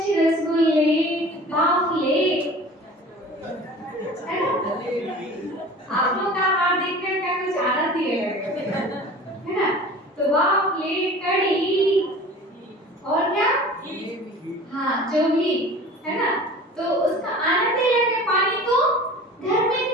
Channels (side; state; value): both; normal; correlation 0.41